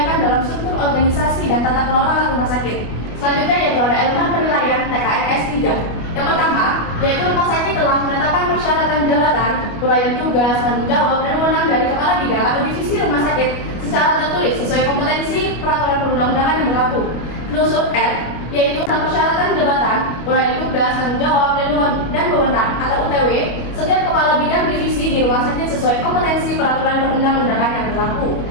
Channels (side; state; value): right; late; 25 ms